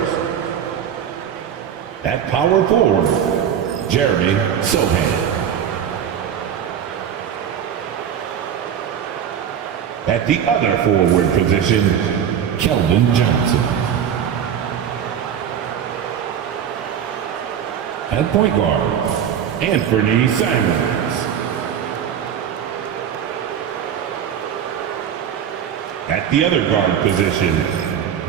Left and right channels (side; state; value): left; quieter; 8.8 dB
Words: at power forward, Jeremy Sohan. At the other forward position, Keldon Johnson. At point guard, Anthony Simons. At the other guard position,